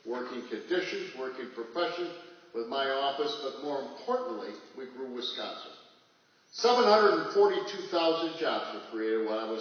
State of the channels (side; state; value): both; identical; correlation 1.00